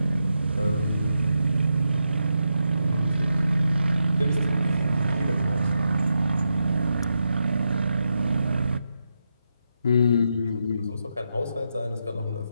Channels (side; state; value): both; inverted; correlation -0.85